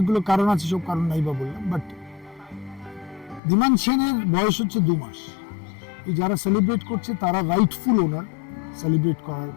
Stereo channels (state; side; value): drops out; right; at 3.4 s